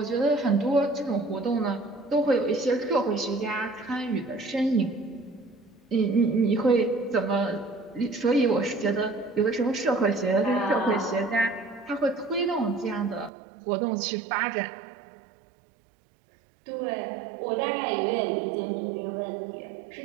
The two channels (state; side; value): drops out; left; at 13.3 s